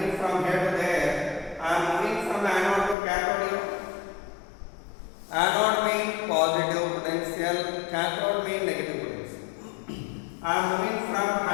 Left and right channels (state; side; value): drops out; right; at 3.0 s